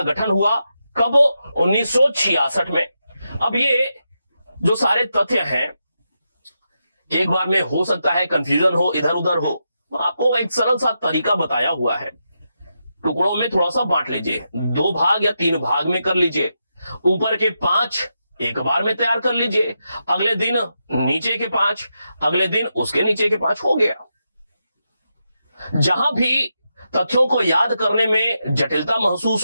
गठन हुआ कब? 1966 में। अब ये जो सारे तथ्य हैं, एक बार में हो सकता है कंफ्यूजन हो, इधर उधर हो। आपको एक सरल सा तरीका बताया हुआ है। टुकड़ों में थोड़ा सा बांट लीजिए, 2 भाग या 3 भाग में कर लीजिए। ऊपर के 5 एक बार में तैयार कर लीजिए, अगले दिन नीचे के 5, अगले दिन उसके नीचे के 5, हो गया। जहां भी तथ्यों को याद करने में जटिलता महसूस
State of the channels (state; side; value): inverted; both; correlation -0.86